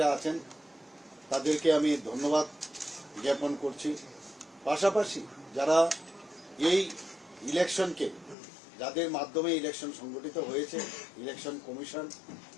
আছেন তাদেরকে আমি ধন্যবাদ জ্ঞাপন করছি। পাশাপাশি যারা এই ইলেকশনকে যাদের মাধ্যমে ইলেকশন সংগঠিত হয়েছে, ইলেকশন কমিশন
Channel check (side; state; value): right; drops out; at 8.3 s